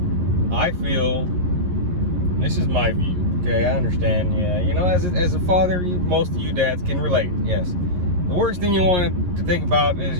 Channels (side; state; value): left; late; 11 ms